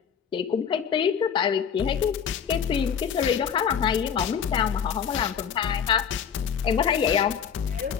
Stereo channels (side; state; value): right; quieter; 7.5 dB